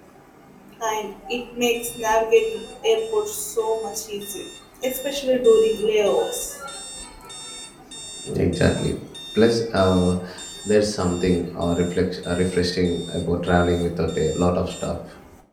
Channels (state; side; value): identical; both; correlation 1.00